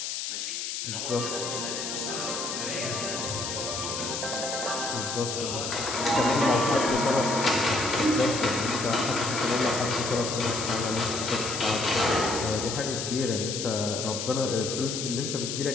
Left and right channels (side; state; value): left; noise; hiss, 3 dB below the sound